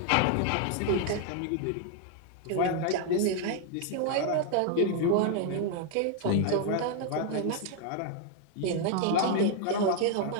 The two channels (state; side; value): different; both; correlation 0.00